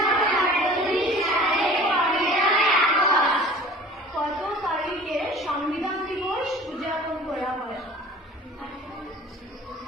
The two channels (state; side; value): normal; both; correlation 0.44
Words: কত তারিখে সংবিধান দিবস উদযাপন করা হয়